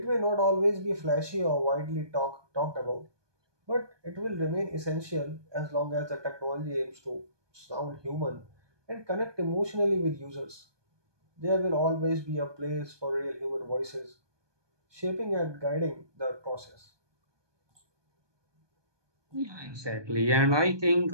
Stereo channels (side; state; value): left; late; 1.2 ms